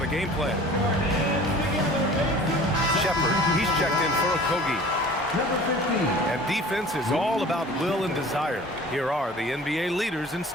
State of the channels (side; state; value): both; normal; correlation 0.44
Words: the game plan. Shepherd, he's checked in for Okogie. And defense is all about will and desire. Here are the NBA leaders in